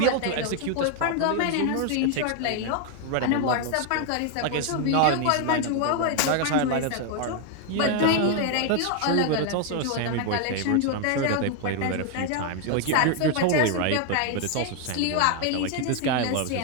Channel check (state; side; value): different; both; correlation 0.01